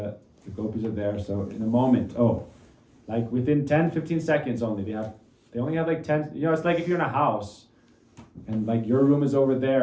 the gopis are there, so in a moment, like within 10, 15 seconds only, they only have like 10, it's like if you're in a house, and like your room is over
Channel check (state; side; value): identical; both; correlation 1.00